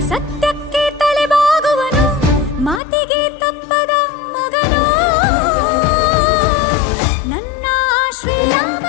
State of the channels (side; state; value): right; drops out; at 2.8 s